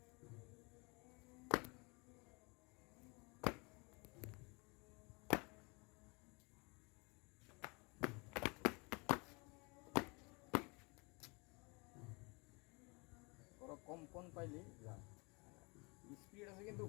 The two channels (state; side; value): quieter; right; 29.5 dB